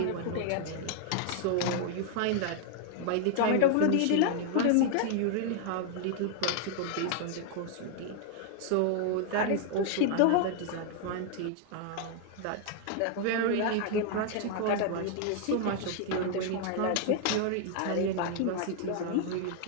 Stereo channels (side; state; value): both; different; correlation 0.00